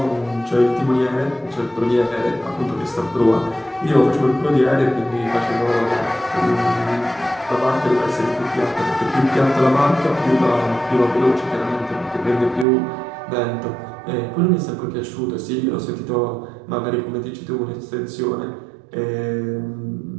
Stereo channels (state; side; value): drops out; left; at 12.7 s